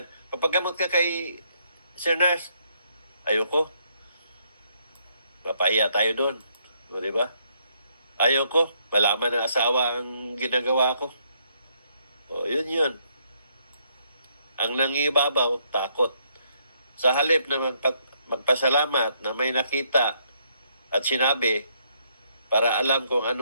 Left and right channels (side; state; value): both; inverted; correlation -0.72